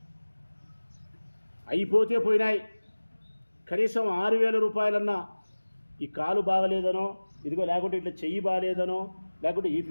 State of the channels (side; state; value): both; inverted; correlation -1.00